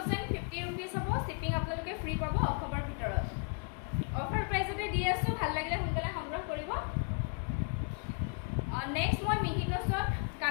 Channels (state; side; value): quieter; right; 39.4 dB